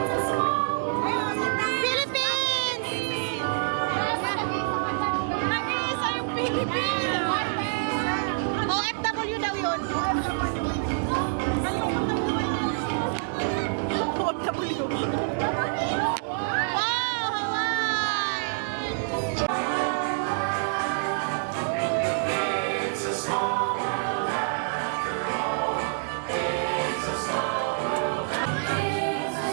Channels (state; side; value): silent; left; digital silence